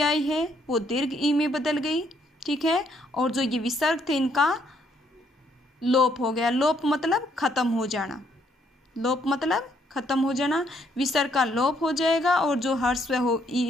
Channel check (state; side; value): normal; both; correlation 0.70